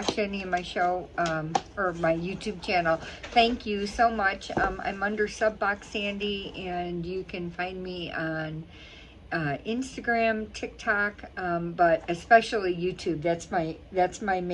any of my show or my YouTube channel, thank you so much. I'm under Subbox Sandy and you can find me on Instagram, TikTok, but especially YouTube. That's my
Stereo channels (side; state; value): both; identical; correlation 1.00